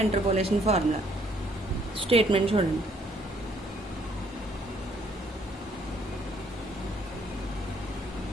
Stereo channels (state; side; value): normal; both; correlation 0.66